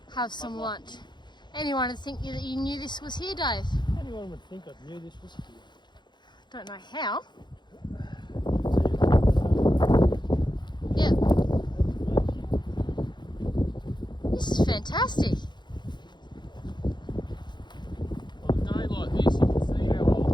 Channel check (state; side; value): late; right; 0.21 ms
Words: have some lunch. Anyone would think that you knew this was here, Dave? Anyone would think I knew this was here. Don't know how. See it? Yeah. This is fantastic. On a day like this, you can see how